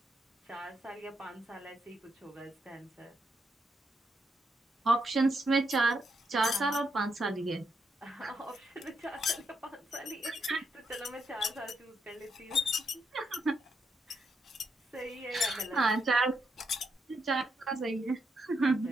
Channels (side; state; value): both; normal; correlation 0.80